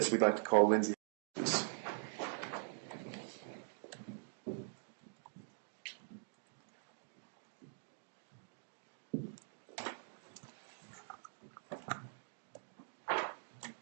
we'd like to call Lindsay, please.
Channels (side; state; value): left; silent; digital silence